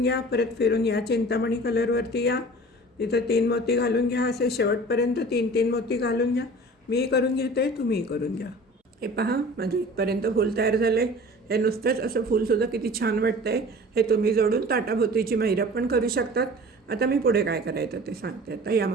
घ्या. परत फिरून या चिंतामणी कलरवरती या, तिथं 3 मोती घालून घ्या. असे शेवटपर्यंत 3-3 मोती घालून घ्या. मी करून घेते, तुम्ही करून घ्या. हे पहा, माझं इथपर्यंत फूल तयार झालं आहे. हे नुसतंच असं फूलसुद्धा किती छान वाटतं आहे. हे तुम्ही जोडून ताटाभोवतीची महिरप पण करू शकतात. आता मी पुढे काय करायचं ते सांगते. आता या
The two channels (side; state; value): both; normal; correlation 0.42